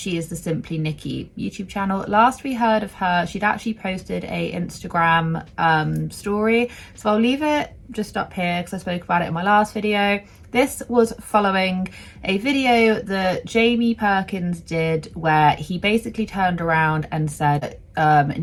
is the Simply Nikki YouTube channel. Last we heard of her, she'd actually posted a Instagram story. So I'll leave it just up here because I spoke about it in my last video. This was following a video that Jamie Perkins did where he basically turned around and said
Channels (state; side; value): identical; both; correlation 1.00